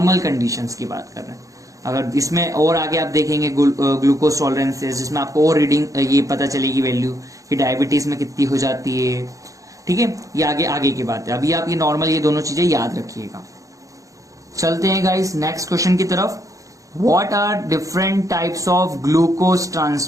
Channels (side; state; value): left; late; 0.16 ms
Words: कंडीशंस की बात कर रहे हैं। अगर इसमें और आगे आप देखेंगे ग्लूकोज टॉलरेंसेस, जिसमें आपको और रीडिंग ये पता चलेगी वैल्यू कि डायबिटीज में कितनी हो जाती है, ठीक है, ये आगे की बात है। अभी आप ये नॉर्मल ये दोनों चीजें याद रखिएगा। चलते हैं गाइस नेक्स्ट क्वेश्चन की तरफ। What are different types of glucose